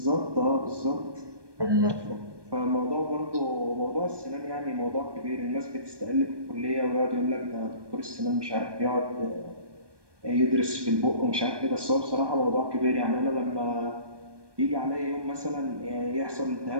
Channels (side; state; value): left; late; 1.2 ms